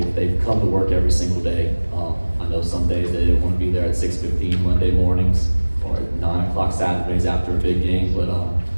come to work every single day. I know some days they didn't want to be there at 6:15 Monday mornings or at 9 o'clock Saturdays after a big game, but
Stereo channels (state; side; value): inverted; both; correlation -1.00